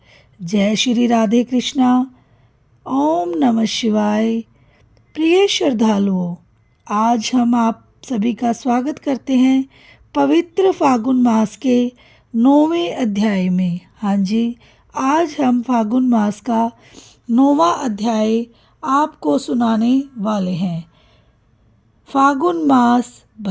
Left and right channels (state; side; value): identical; both; correlation 1.00